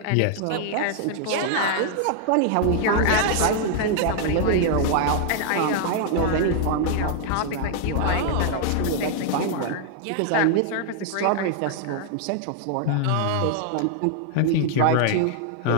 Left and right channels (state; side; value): different; both; correlation 0.00